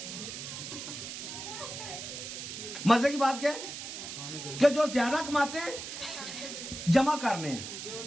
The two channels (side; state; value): right; noise; hiss, 8 dB below the sound